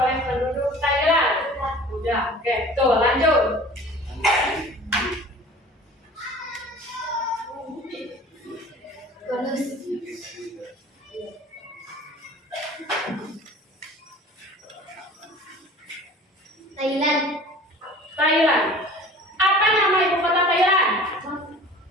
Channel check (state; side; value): normal; both; correlation 0.44